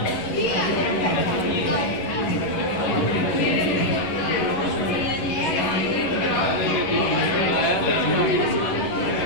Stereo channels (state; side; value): late; right; 11 ms